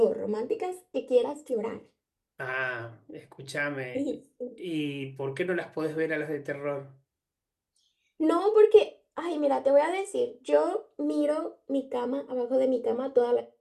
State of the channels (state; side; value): identical; both; correlation 1.00